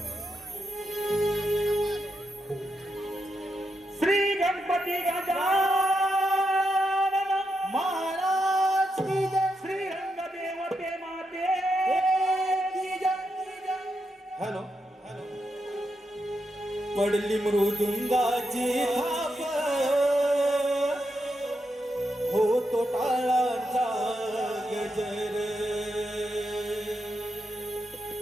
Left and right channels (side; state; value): both; normal; correlation 0.84